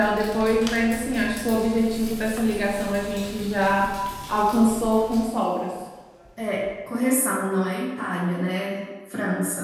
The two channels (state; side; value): identical; both; correlation 1.00